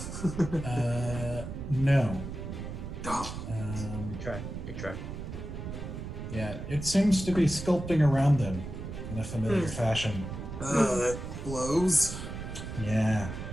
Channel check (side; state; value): right; noise; rumble, 8 dB below the sound